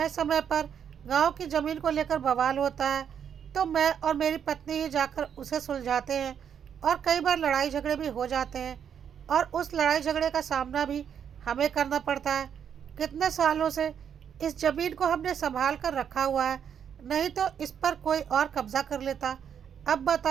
समय पर गांव की ज़मीन को लेकर बवाल होता है, तो मैं और मेरी पत्नी ही जाकर उसे सुलझाते हैं। और कई बार लड़ाई झगड़े भी हो जाते हैं और उस लड़ाई झगड़े का सामना भी हमें करना पड़ता है। कितने सालों से इस ज़मीन को हमने संभाल कर रखा हुआ है, नहीं तो इस पर कोई और कब्जा कर लेता। अब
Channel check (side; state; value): left; quieter; 8.2 dB